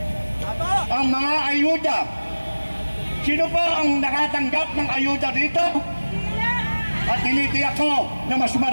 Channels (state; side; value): inverted; both; correlation -1.00